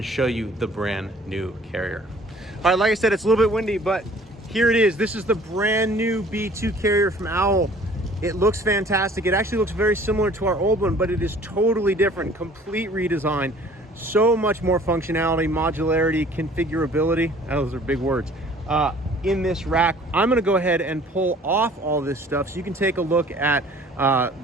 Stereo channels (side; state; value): both; normal; correlation 0.52